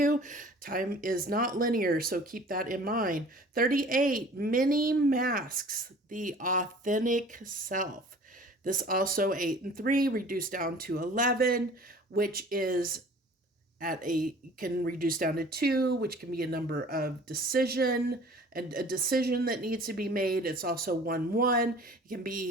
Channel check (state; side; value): normal; both; correlation 0.47